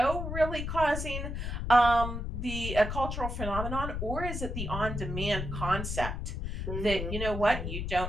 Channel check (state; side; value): noise; left; rumble, 4 dB below the sound